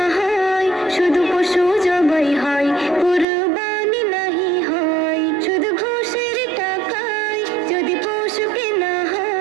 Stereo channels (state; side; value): drops out; left; at 3.2 s